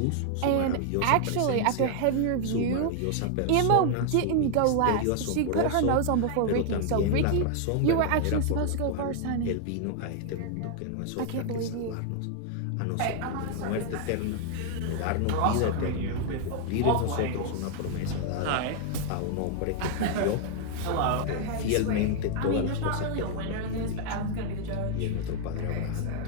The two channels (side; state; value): both; different; correlation 0.00